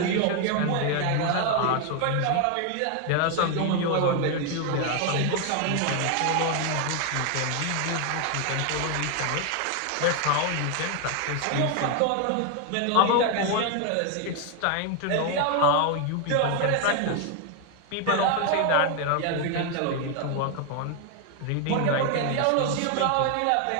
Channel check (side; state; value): both; different; correlation 0.01